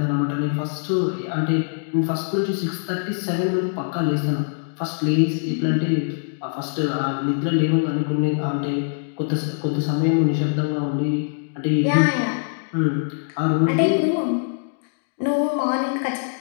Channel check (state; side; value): silent; right; digital silence